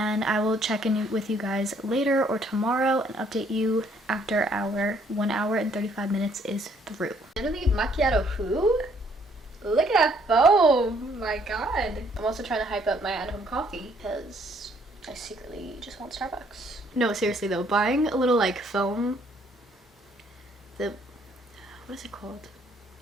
I will check in with you guys later or tomorrow and update you after our 1 hour and 35 minutes is through. Literally macchiato who? Look at that foam! My god. I'm also trying to hype up my at-home coffee because I secretly just want Starbucks. No, seriously though, buying a little like foam, what is it called?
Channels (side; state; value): both; normal; correlation 0.65